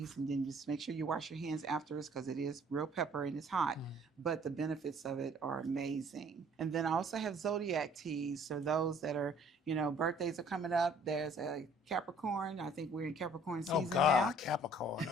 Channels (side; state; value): both; normal; correlation 0.56